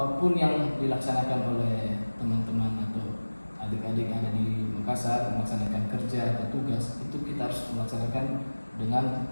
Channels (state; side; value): inverted; both; correlation -1.00